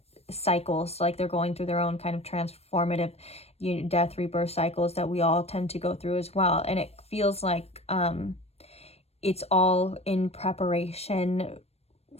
cycles, like they're going through their own kind of transformative death, rebirth cycles that we all tend to go through as well. And it feels like it's all in preparation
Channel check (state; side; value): late; right; 0.30 ms